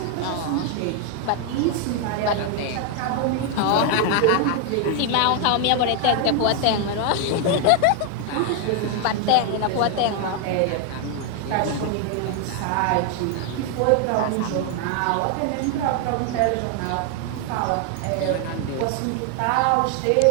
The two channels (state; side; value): different; both; correlation 0.00